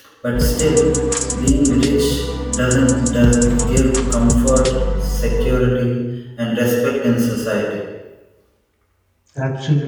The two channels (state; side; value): identical; both; correlation 1.00